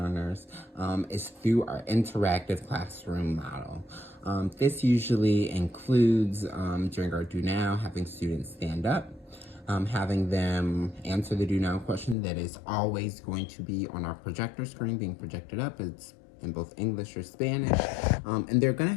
is through our interactive classroom model. This usually includes, during our Do Now, having students stand up, having them answer the Do Now question that is always going to be on our projector screen being projected up. It's in both English or Spanish, and they're going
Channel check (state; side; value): drops out; right; at 12.2 s